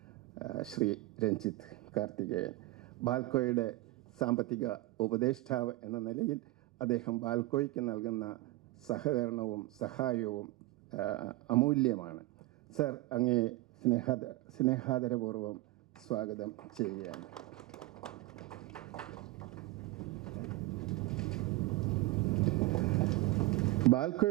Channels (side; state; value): left; quieter; 18.8 dB